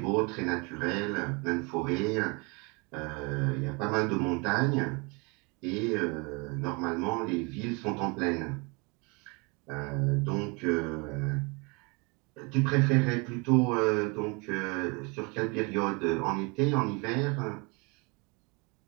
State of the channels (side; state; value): left; quieter; 29.9 dB